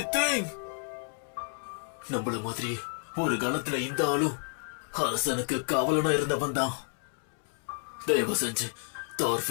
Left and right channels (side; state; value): right; silent; 57 dB below the other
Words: தேங் நம்மள மாதிரி ஒரு காலத்துல இந்த ஆளும் அரசனுக்கு காவலனா இருந்தவன் தான். தயவு செஞ்சு